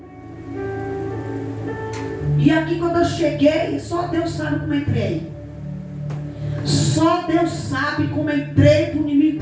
E aqui quando eu cheguei, só Deus sabe como eu entrei. Só Deus sabe como eu entrei para o inimigo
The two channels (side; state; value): both; identical; correlation 1.00